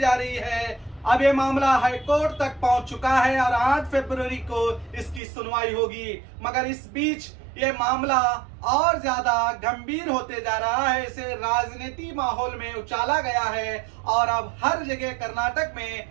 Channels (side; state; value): left; drops out; at 5.2 s